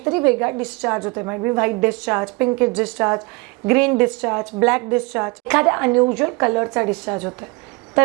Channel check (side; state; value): left; quieter; 27.1 dB